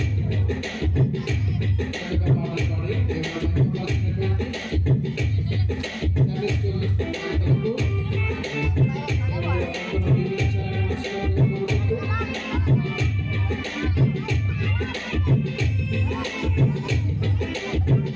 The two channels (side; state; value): both; identical; correlation 1.00